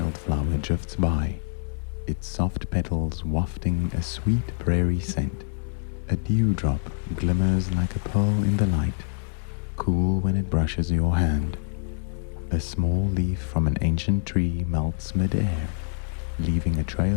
drifts by, its soft petals wafting a sweet prairie scent. A dewdrop glimmers like a pearl in the light, cool when it brushes your hand. A small leaf from an ancient tree melts mid-air, leaving a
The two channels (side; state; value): right; silent; digital silence